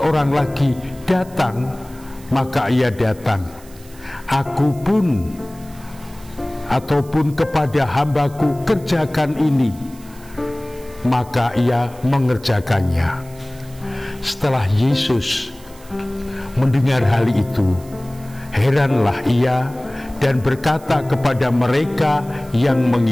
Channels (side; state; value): right; noise; hiss, 23 dB below the sound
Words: lagi, 'Datang,' maka ia datang. Aku pun ataupun kepada hambaku, 'Kerjakan ini,' maka ia mengerjakannya." Setelah Yesus mendengar hal itu, heranlah ia dan berkata kepada mereka yang